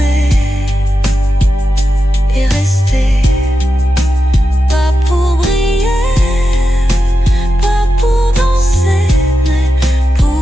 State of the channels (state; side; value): normal; both; correlation 0.89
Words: et rester. Pas pour briller, pas pour danser, mais